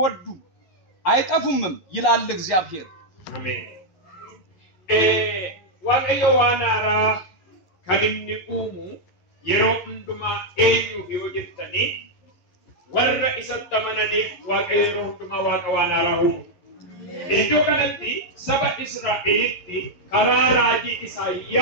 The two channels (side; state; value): right; late; 11 ms